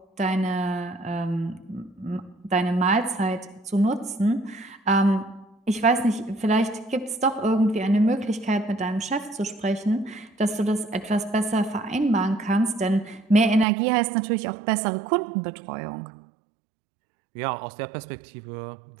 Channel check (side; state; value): left; drops out; at 13.7 s